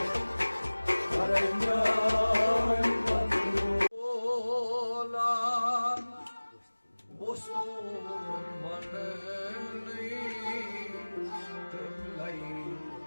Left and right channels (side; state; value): both; inverted; correlation -1.00